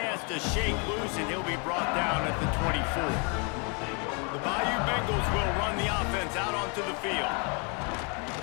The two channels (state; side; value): quieter; right; 34.5 dB